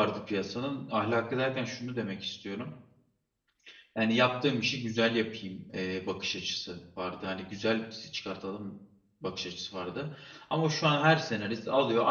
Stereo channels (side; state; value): both; identical; correlation 1.00